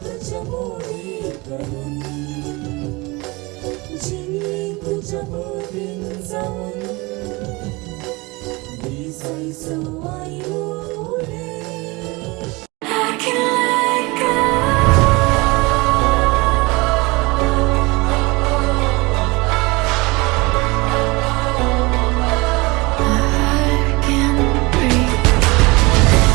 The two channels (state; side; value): quieter; left; 24.5 dB